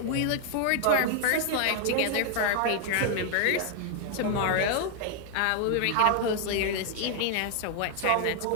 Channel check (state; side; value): different; both; correlation 0.00